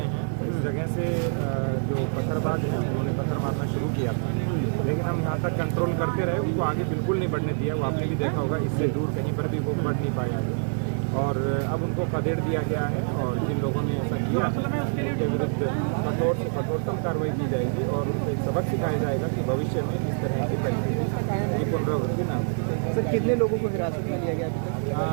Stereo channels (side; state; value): left; silent; digital silence